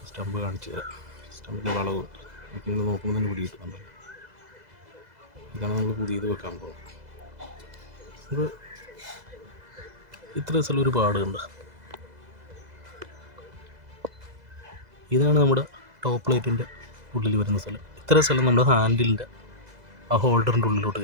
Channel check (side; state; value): left; late; 2.0 ms